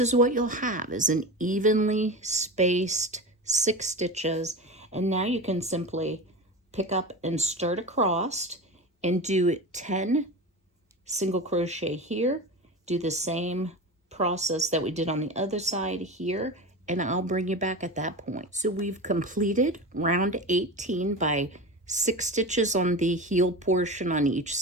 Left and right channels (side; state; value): both; normal; correlation 0.27